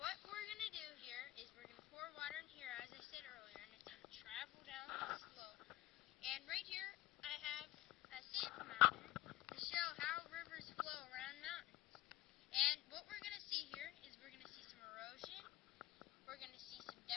we're going to do here is we're going to pour water in here, as I said earlier, and it's going to travel down the slope. And right here, I have a sand mountain to show how rivers flow around mountains. And what we're going to see here is we're going to see some erosion, we're going to see some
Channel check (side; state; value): right; quieter; 16.5 dB